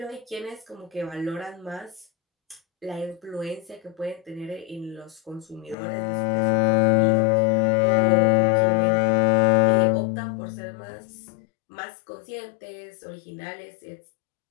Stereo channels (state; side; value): drops out; right; at 5.8 s